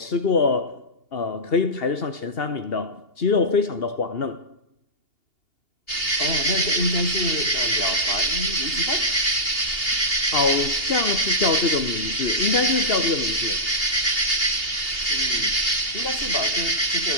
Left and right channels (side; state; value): right; late; 2.8 ms